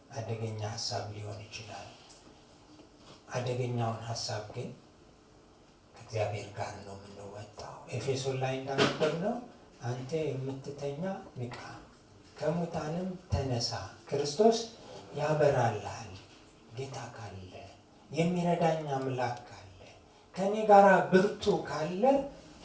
አደገኛውን ሀሳብ ግን ከእግዚአብሔር ጋር ነው የምንወጣው። ኤፌሶን ላይ እንዳነበብነው አንተ የምትተኛ ንቃ፣ ከሙታንም ተነሳ፣ ክርስቶስ ያበራልሃል። ጌታ ካለ፣ የሚረዳኝ አምላክ ካለ፣ ከኔ ጋር ብርቱ ካለ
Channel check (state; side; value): identical; both; correlation 1.00